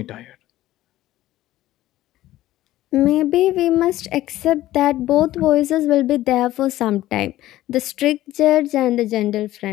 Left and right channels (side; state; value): right; quieter; 15.0 dB